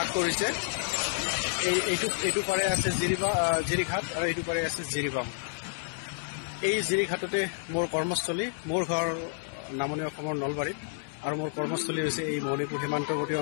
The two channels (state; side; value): silent; right; 58 dB below the other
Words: কৰিছে। এইটো পাৰে আছে জিৰিঘাট আৰু এইটো পাৰে আছে জিৰিবাম। এই জিৰিঘাটতে মোৰ কৰ্মস্থলী, মোৰ ঘৰ নামনি অসমৰ নলবাৰীত আৰু মোৰ কৰ্মস্থলী হৈছে এই মণিপুৰ সীমান্তৱৰ্তী